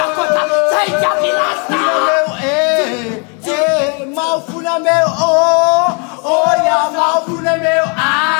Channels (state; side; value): quieter; right; 35.9 dB